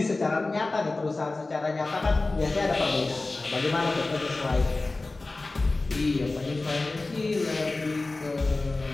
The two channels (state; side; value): quieter; right; 3.2 dB